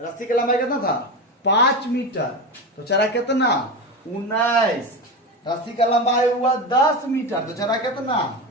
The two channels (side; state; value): both; normal; correlation 0.21